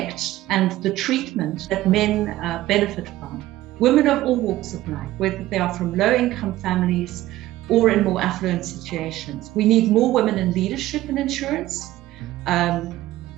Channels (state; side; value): quieter; left; 15.7 dB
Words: and the treatment that men benefit from. Women of all walks of life, whether they are from low-income families or in more affluent situations. We need more women in leadership in insurance.